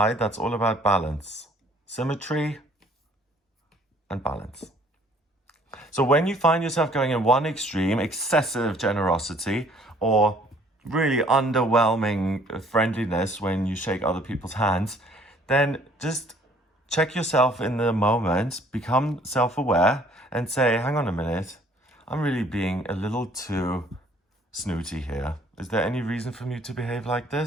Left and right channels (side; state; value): both; normal; correlation 0.59